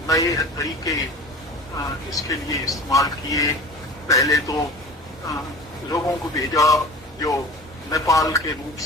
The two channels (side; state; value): both; normal; correlation 0.37